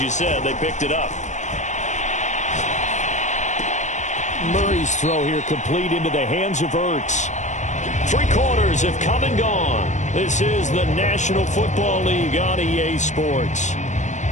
said, they picked it up. Murray's throw here complete into the hands of Ertz. 3 quarters have come and gone. This is the National Football League on EA Sports.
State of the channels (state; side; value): late; right; 0.35 ms